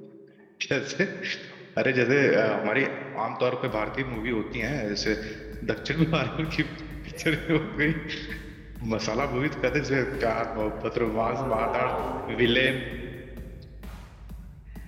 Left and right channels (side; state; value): both; identical; correlation 1.00